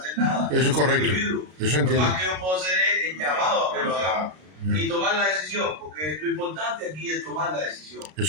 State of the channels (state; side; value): late; left; 33 ms